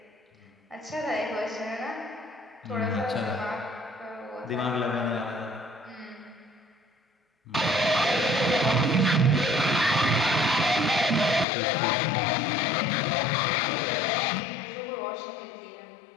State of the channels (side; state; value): right; drops out; at 11.5 s